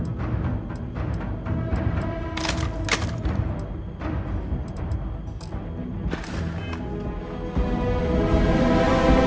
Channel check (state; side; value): identical; both; correlation 1.00